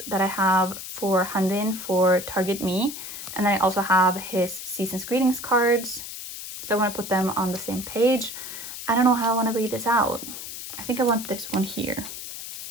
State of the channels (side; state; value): left; noise; hiss, 9 dB below the sound